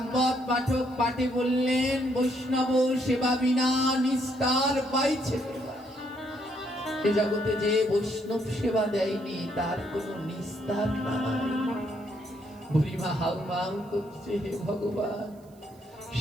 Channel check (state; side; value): noise; right; hiss, 30 dB below the sound